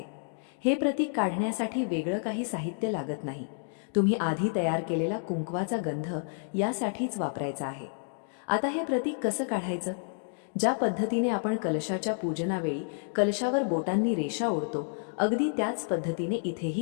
हे प्रतीक काढण्यासाठी वेगळं काही साहित्य लागत नाही. तुम्ही आधी तयार केलेला कुंकवाचा गंध यासाठीच वापरायचा आहे. आता हे प्रतीक कसं काढायचं? ज्या पद्धतीने आपण कलशाच्या पूजनावेळी कलशावर बोटांनी रेषा ओढतो, अगदी त्याच पद्धतीने इथेही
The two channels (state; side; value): silent; right; digital silence